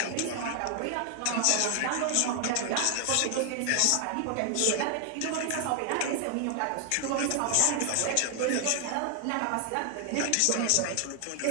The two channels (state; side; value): different; both; correlation 0.00